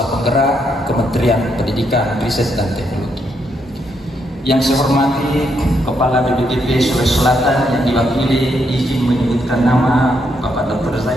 Penggerak Kementerian Pendidikan, Riset dan Teknologi. Yang saya hormati Kepala BPTP Sulawesi Selatan yang diwakili, izin menyebutkan nama Bapak Dr.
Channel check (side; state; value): both; normal; correlation 0.77